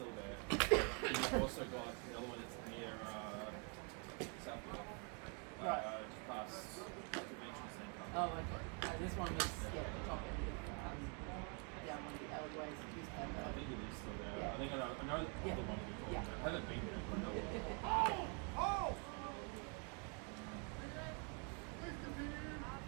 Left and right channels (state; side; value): quieter; left; 37.2 dB